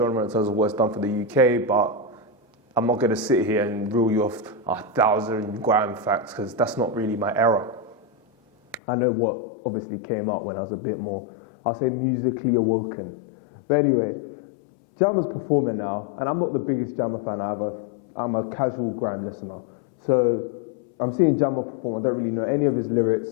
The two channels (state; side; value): drops out; right; at 8.8 s